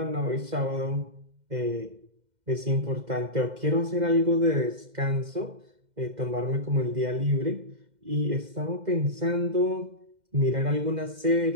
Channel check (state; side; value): late; left; 2.1 ms